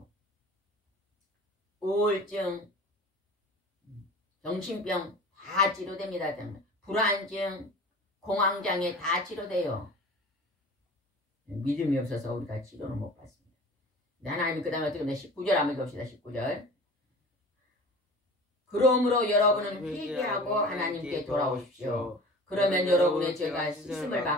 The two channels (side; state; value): both; normal; correlation 0.40